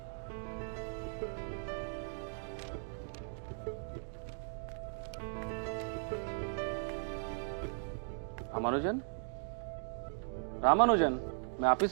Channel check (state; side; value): silent; left; digital silence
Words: रामानुजन, रामानुजन, मैं आप ही